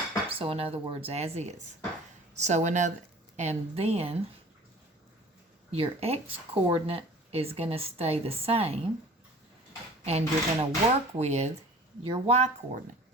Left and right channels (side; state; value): both; normal; correlation 0.46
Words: So in other words, as is. So and then your x coordinate is going to stay the same, and you're going to work with your y coordinate.